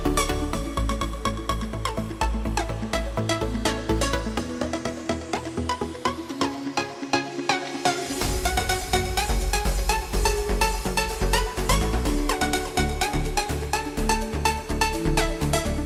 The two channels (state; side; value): identical; both; correlation 1.00